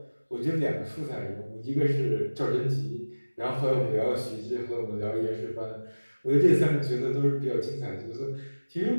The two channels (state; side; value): inverted; both; correlation -1.00